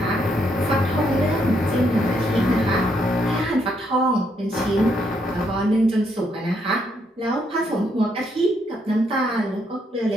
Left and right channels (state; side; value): normal; both; correlation 0.75